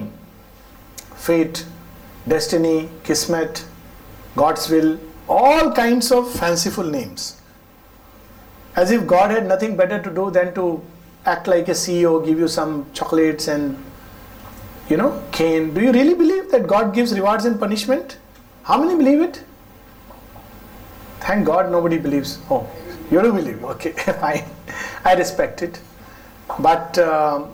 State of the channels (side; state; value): both; identical; correlation 1.00